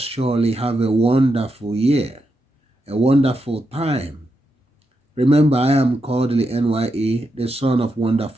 surely have a wonderful year, a wonderful time. Remember, I am Kodili-nye, the son of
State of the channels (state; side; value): normal; both; correlation 0.85